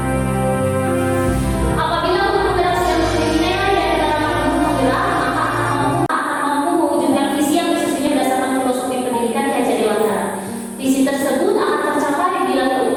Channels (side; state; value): both; identical; correlation 1.00